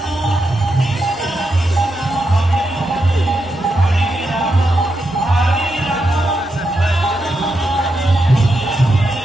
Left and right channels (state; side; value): normal; both; correlation 0.85